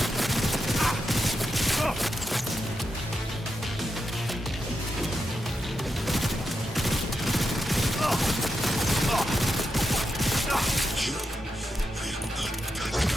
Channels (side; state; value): both; normal; correlation 0.87